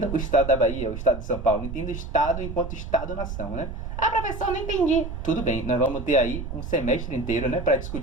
o Estado da Bahia, o Estado de São Paulo. Entenda o Estado enquanto Estado-nação, né? Ah, professor, não entendi. Tudo bem, nós vamos ter aí um semestre inteiro, né, para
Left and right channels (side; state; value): right; noise; rumble, 7 dB below the sound